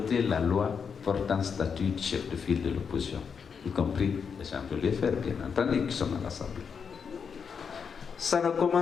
la loi portant statut de chef de file de l'opposition, y compris les gens de l'UFR, bien entendu, qui sont à l'Assemblée. Ça ne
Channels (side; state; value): right; quieter; 6.3 dB